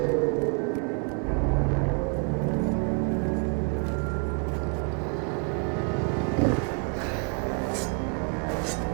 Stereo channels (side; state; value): left; quieter; 37.6 dB